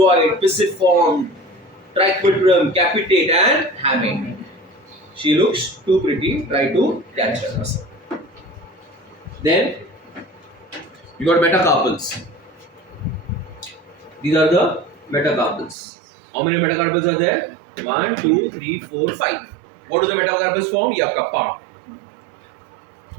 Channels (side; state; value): left; drops out; at 15.8 s